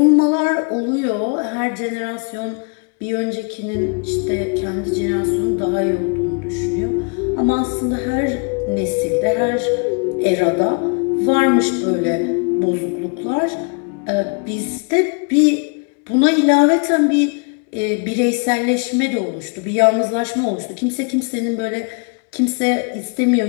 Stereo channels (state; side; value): quieter; right; 35.5 dB